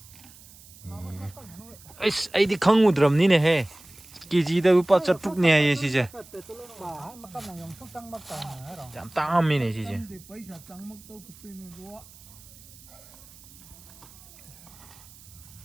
에이씨 아이디 강우드럼니네 해 기지다 우빠 저뚝네 예 시제 참 땅함이네 시제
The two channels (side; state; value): right; noise; hiss, 22 dB below the sound